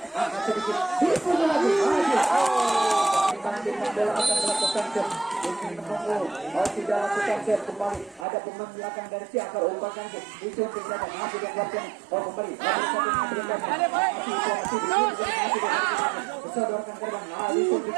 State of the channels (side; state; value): left; drops out; at 8.2 s